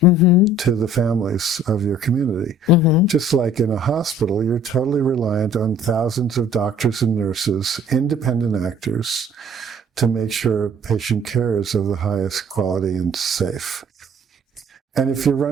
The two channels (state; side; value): normal; both; correlation 0.54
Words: to the families of your community. Just like in a hospital, you're totally reliant on thousands of doctors and nurses, independent actors, to make sure patient care is of the highest quality and safe. And if you're